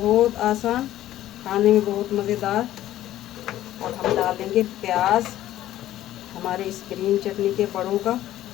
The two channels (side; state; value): right; quieter; 13.5 dB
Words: आसान, खाने में बहुत मज़ेदार। अब हम डाल लेंगे प्याज हमारे इस ग्रीन चटनी के बड़ों का